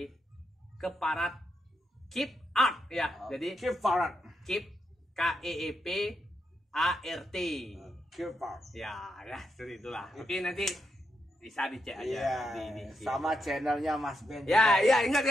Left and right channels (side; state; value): both; normal; correlation 0.83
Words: Keparat Keep Art ya. Jadi Keep Farad. Keep KEEP ART. Keep Farad. Ya, seperti itulah. Oke, nanti bisa dicek aja Iya. di Sama channelnya Mas Ben. Ya, juga. ya ingat